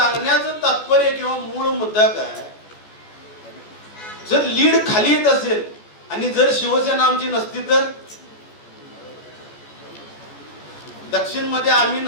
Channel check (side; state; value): right; late; 14 ms